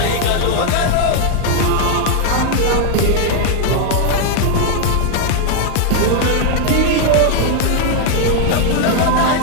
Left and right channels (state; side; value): different; both; correlation 0.00